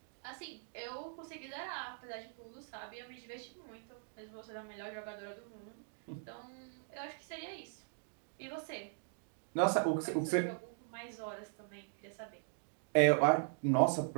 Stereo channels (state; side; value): silent; left; digital silence